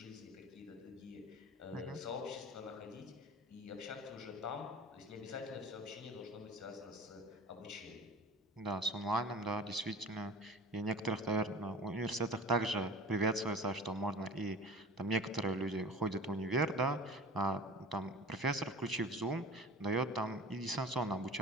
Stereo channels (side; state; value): both; normal; correlation 0.40